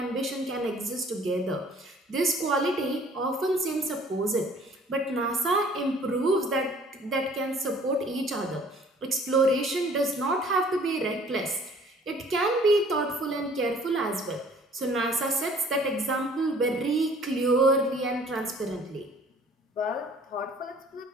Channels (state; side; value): normal; both; correlation 0.54